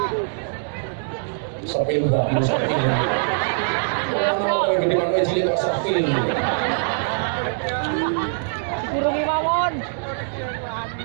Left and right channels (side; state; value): left; silent; 64 dB below the other